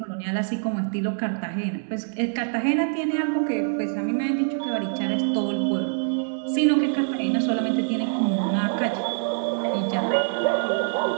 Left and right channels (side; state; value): left; silent; digital silence